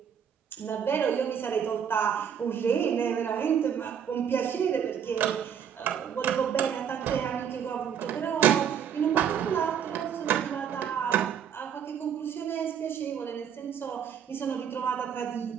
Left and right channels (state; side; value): quieter; left; 8.2 dB